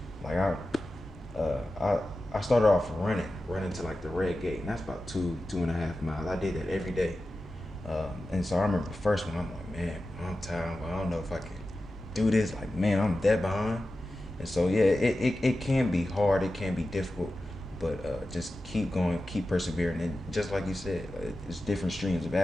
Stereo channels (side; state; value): both; normal; correlation 0.93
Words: Like I started off running to like the red gate, and that's about 2.5 miles. I did that every day. And so I remember the first one, I'm like, man, I'm tired. I don't know if I can do this. Like, man, I'm dead behind. And so, yeah, it can be hard. It can be difficult. But just keep going, keep persevering. And just like you said, it's different streams of